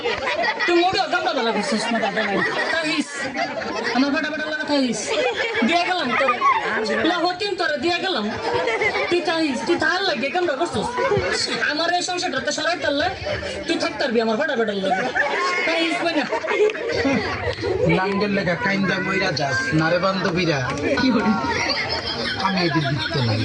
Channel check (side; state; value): both; identical; correlation 1.00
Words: তুই মোড়ে আমরা ভালো করছিস না দাদা নাই তাইস আমার ফাটা ফাটা লাগা তাইস দিয়া গেলাম তোর হতিন তোরে দিয়া গেলাম তুই তাইস তুই তার লাগে কেমন করছিস আমার এই সংসারটা সরাই তারলে তুই থাকতে পারবি আমার ফাটা ফাটা লাগে তাইস না নাঙ্গের লেখা কাইন্দা মইরা যাস নারে বান্ধবীরা কি বলি আমি এদের দিতে নাই